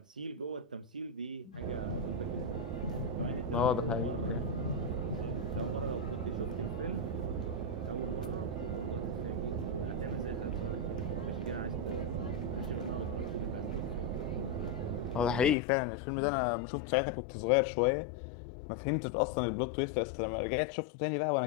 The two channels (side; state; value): right; drops out; at 15.6 s